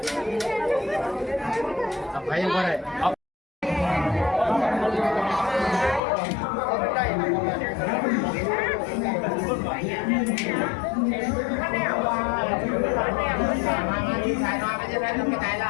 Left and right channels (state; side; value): drops out; right; at 6.0 s